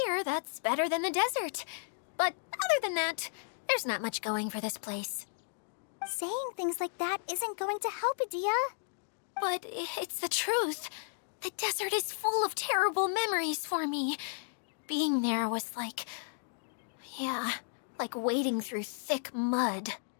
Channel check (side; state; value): right; silent; digital silence